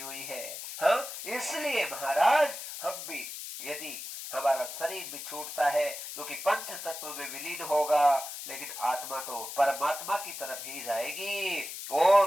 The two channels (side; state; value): left; noise; hiss, 8 dB below the sound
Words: हुई है। हाँ, इसलिए महाराज हम भी, यदि हमारा शरीर भी छूटता है जो कि पंच तत्व में विलीन होगा, लेकिन आत्मा तो परमात्मा की तरफ ही जाएगी